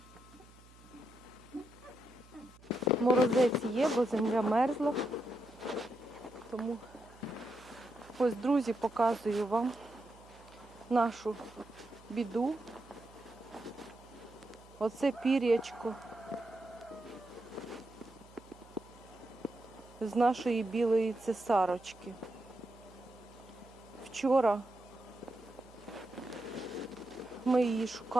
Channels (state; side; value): noise; right; hum, 23 dB below the sound